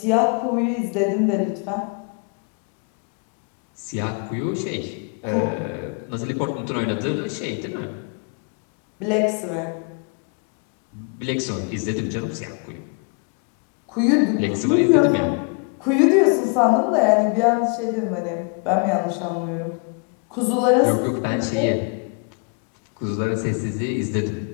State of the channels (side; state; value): right; quieter; 36.2 dB